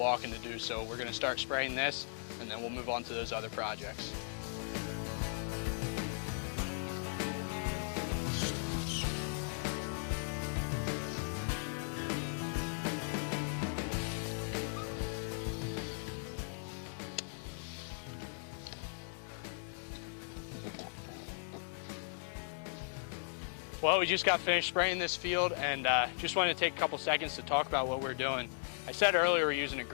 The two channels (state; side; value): silent; right; digital silence